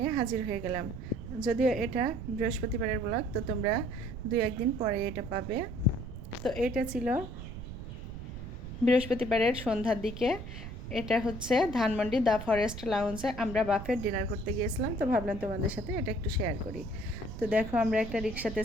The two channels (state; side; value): noise; right; rumble, 9 dB below the sound